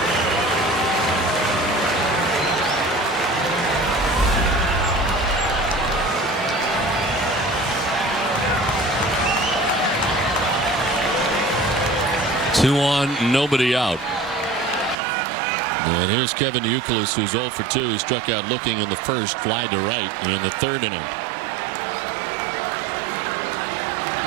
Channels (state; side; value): drops out; left; at 15.0 s